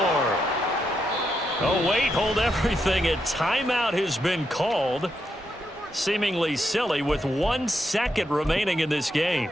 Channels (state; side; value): normal; both; correlation 0.82